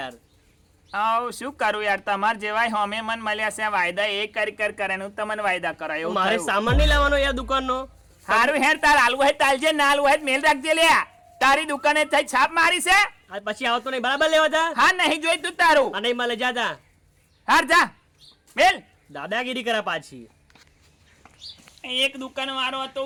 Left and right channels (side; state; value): both; identical; correlation 1.00